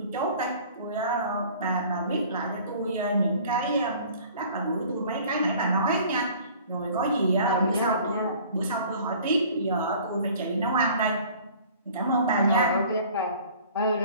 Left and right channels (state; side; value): inverted; both; correlation -0.49